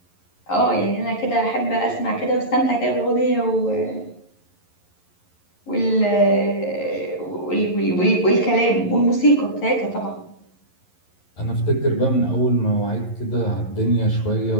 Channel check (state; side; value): late; right; 11 ms